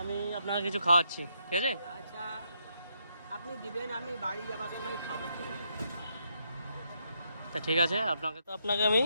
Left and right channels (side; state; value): both; inverted; correlation -0.77